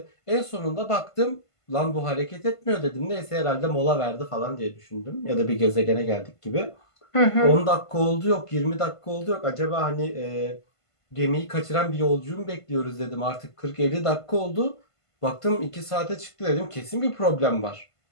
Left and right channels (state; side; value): late; right; 1.5 ms